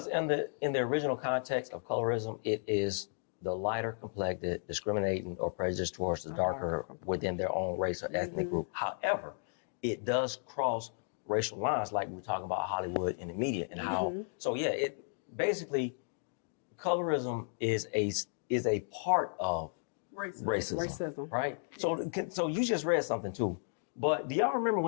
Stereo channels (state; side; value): silent; right; digital silence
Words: in the original context of colorism, it is the lighter complected discriminating or prejudice towards the darker within their own race or ethnic group. However, it does cross racial lines, like we're talking about Hollywood and the media and how. So yeah, it basically colorism is a part of racism. Right? So you just read something too. But do y'all remember